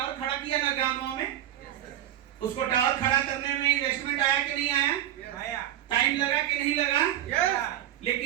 खड़ा किया ना गांव में, उसको टावर खड़ा करने में इन्वेस्टमेंट आया कि नहीं आया? टाइम लगा कि नहीं लगा?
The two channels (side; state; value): left; quieter; 12.2 dB